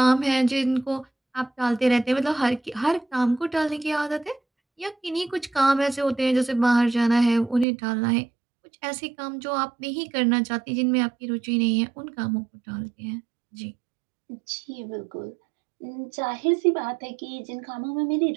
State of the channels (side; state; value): left; drops out; at 7.7 s